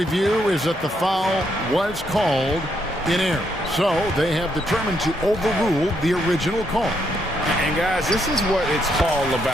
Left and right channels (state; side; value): normal; both; correlation 0.76